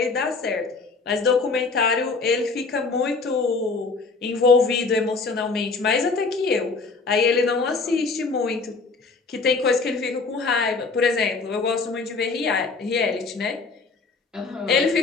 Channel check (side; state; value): right; quieter; 4.2 dB